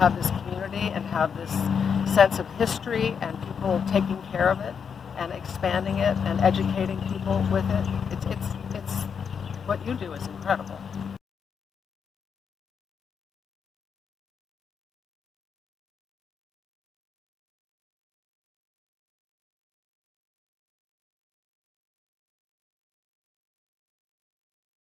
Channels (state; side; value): quieter; right; 6.7 dB